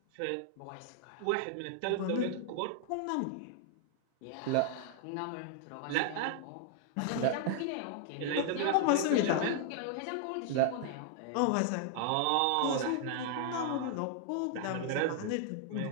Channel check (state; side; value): different; both; correlation 0.00